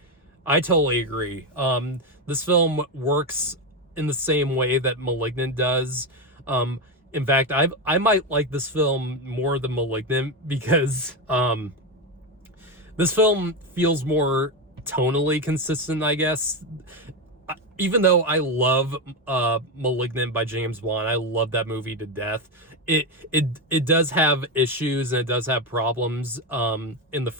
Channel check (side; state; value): both; normal; correlation 0.11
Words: agree. This film works in the same way that Malignant does. In fact, I might like this film more than Malignant, because this film feels more tonally consistent, I guess. Even though I love Malignant by James Wan, I love that movie to death. It does have issues, and it does have problems in the